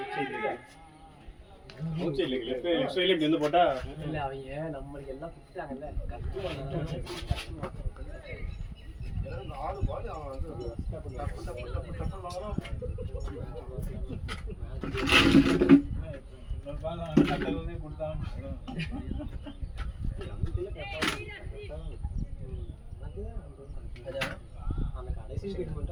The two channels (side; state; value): both; identical; correlation 1.00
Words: லெஃப்ட் சைடுல இப்படி வந்து போட்டா இல்ல அவங்க நம்மளுக்கு எல்லாம் குடுத்தாங்கல்ல அந்த கடைசி